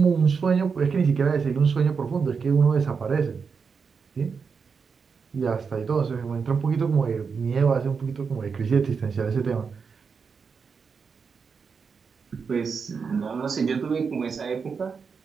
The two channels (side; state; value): left; quieter; 5.6 dB